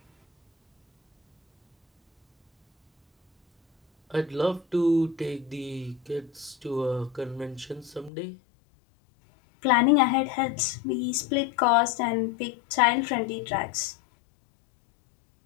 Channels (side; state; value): right; drops out; at 8.1 s